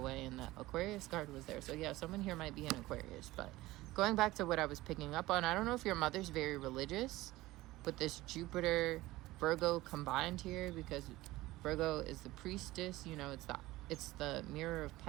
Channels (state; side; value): quieter; left; 18.2 dB